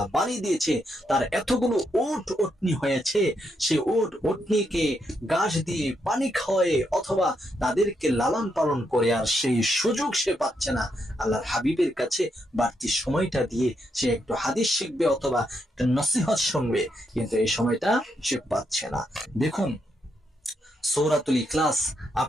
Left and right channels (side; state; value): both; normal; correlation 0.80